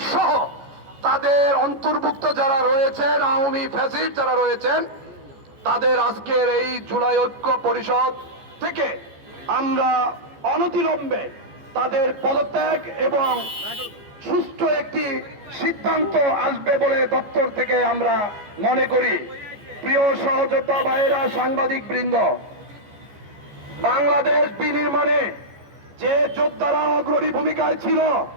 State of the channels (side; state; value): left; late; 14 ms